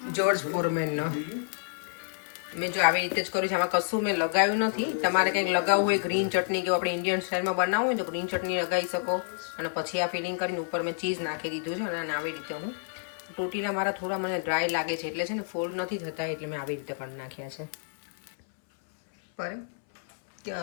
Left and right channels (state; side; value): silent; right; 59 dB below the other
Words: જોર્જ ફોરમેનનો મેં જો આવી રીતે જ કર્યું છે આમાં કશું મેં લગાવ્યું નથી તમારે કંઈક લગાવવું હોય ગ્રીન ચટણી કે આપણે ઇન્ડિયન સ્ટાઇલમાં બનાવવું હોય તો ગ્રીન ચટણી લગાવી શકો અને પછી આ ફિલિંગ કરીને ઉપર મેં ચીઝ નાખી દીધું છે અને આવી રીતે હું ટોટીના મારા થોડા મને ડ્રાય લાગે છે એટલે છે ને ફોલ્ડ નથી થતા એટલે મેં આવી રીતે કરી નાખ્યા છે પર